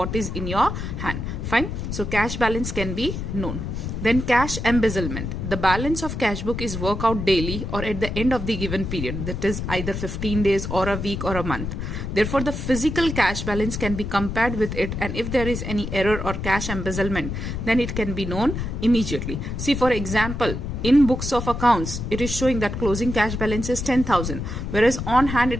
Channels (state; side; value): noise; left; rumble, 5 dB below the sound